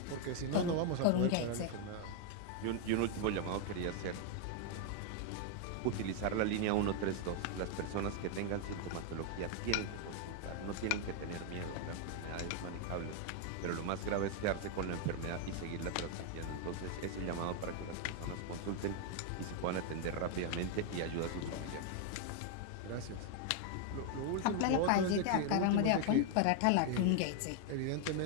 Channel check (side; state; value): both; different; correlation 0.00